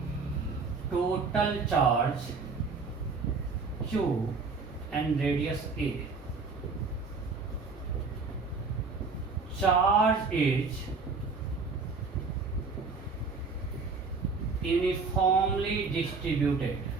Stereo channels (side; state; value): left; quieter; 4.5 dB